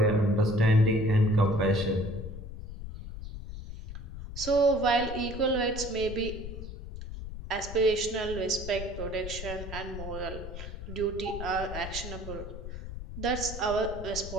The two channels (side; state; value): left; noise; rumble, 9 dB below the sound